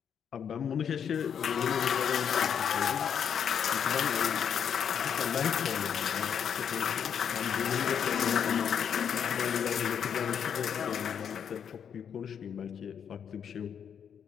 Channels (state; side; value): quieter; right; 7.9 dB